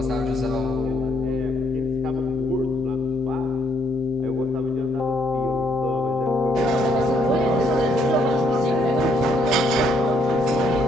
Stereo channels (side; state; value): both; normal; correlation 0.71